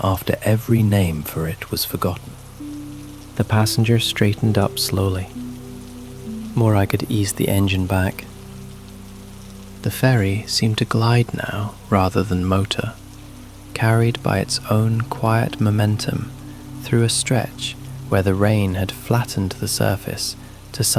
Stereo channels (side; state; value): both; identical; correlation 1.00